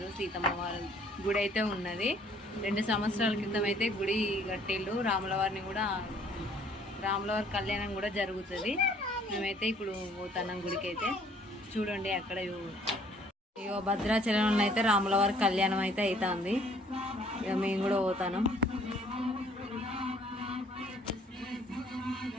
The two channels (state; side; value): normal; both; correlation 0.59